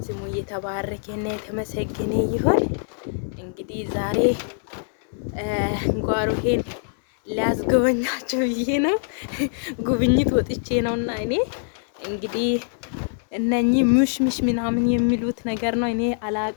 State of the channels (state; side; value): silent; right; digital silence